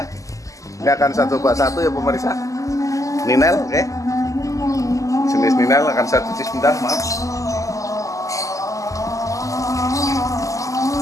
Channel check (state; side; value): late; right; 0.16 ms